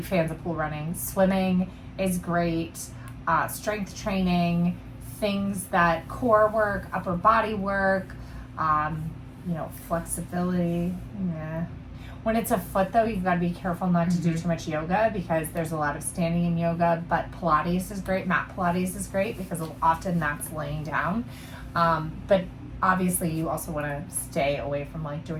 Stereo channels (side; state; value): both; identical; correlation 1.00